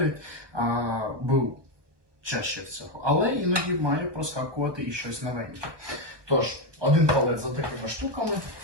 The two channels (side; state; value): left; late; 1.2 ms